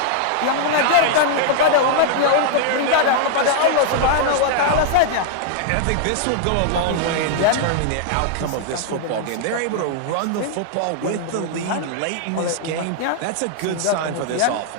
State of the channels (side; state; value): both; different; correlation -0.01